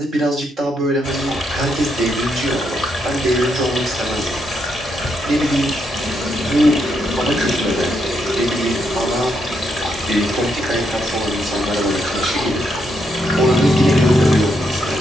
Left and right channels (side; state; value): both; normal; correlation 0.79